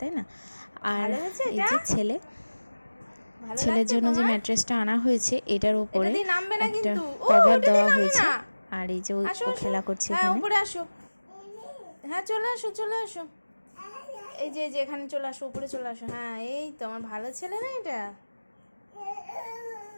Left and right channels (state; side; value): inverted; both; correlation -1.00